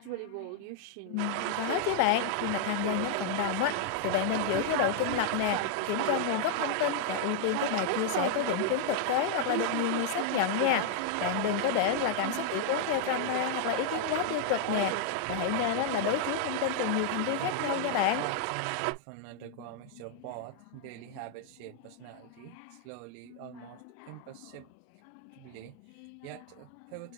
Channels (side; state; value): both; different; correlation -0.01